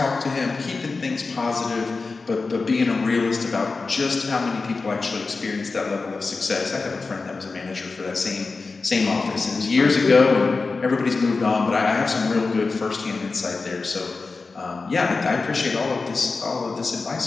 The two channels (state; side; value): quieter; right; 4.1 dB